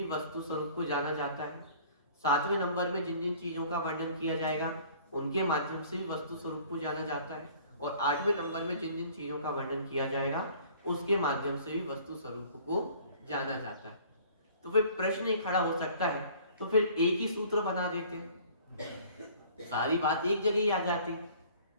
वस्तु स्वरूप को जाना जाता है। 7वें नंबर में जिन जिन चीजों का वर्णन किया जाएगा उनके माध्यम से भी वस्तु स्वरूप को जाना जाता है, और 8वें नंबर में जिन जिन चीजों का वर्णन किया जाएगा उसके माध्यम से भी वस्तु स्वरूप को जाना जाता है। तो फिर प्रश्न ही खड़ा हो सकता है, तो फिर एक ही सूत्र बना देते हैं, सारी बात एक जगह ही आ जाती।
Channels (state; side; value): inverted; both; correlation -0.51